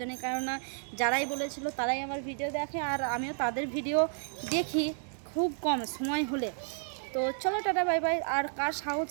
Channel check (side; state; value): left; silent; 57 dB below the other